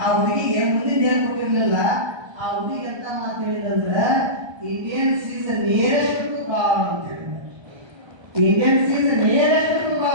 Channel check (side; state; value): left; late; 1.3 ms